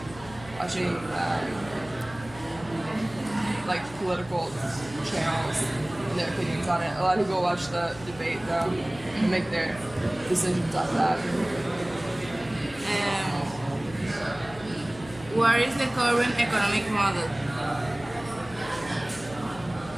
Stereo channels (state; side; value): noise; left; hum, 18 dB below the sound